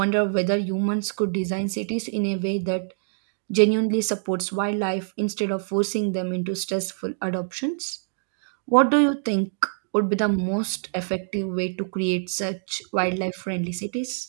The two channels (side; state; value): left; silent; digital silence